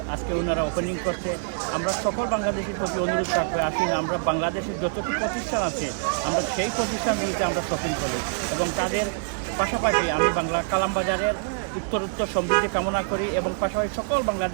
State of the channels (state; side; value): silent; left; digital silence